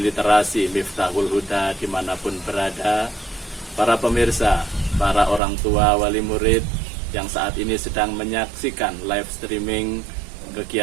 Miftahul Huda dimanapun berada, para pemirsa, para orang tua, wali murid yang saat ini sedang menyaksikan live streaming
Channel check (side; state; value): left; drops out; at 5.4 s